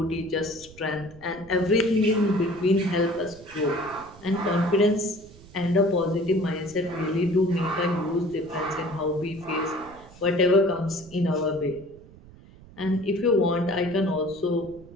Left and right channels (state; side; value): noise; right; rumble, 21 dB below the sound